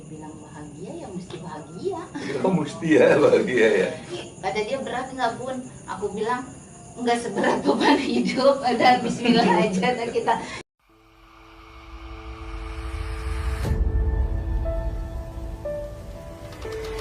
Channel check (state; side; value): identical; both; correlation 1.00